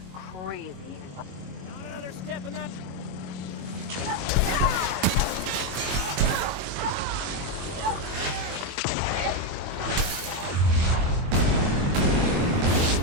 crazy. Not another step in that...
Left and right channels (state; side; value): late; left; 22 ms